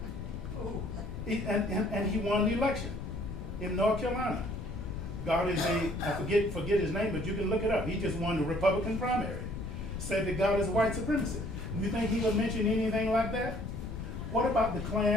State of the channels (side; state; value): left; noise; rumble, 7 dB below the sound